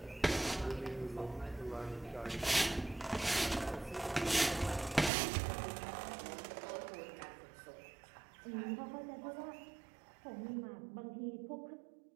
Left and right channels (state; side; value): drops out; left; at 5.1 s